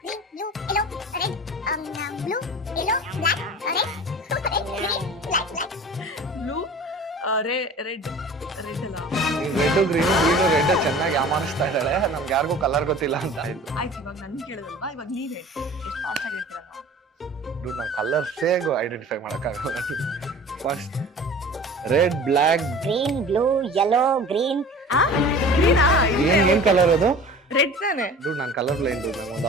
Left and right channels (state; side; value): normal; both; correlation 0.42